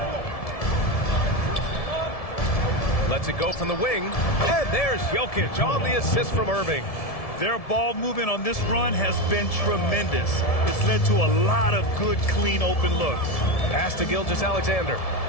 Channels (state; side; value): late; right; 1.7 ms